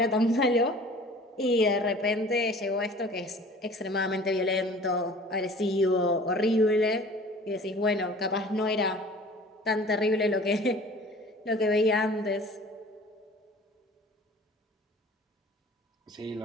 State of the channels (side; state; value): both; normal; correlation 0.46